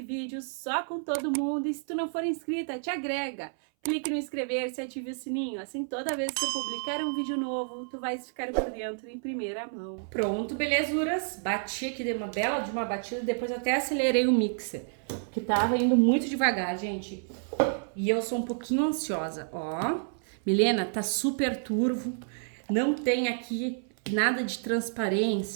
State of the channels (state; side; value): silent; left; 58 dB below the other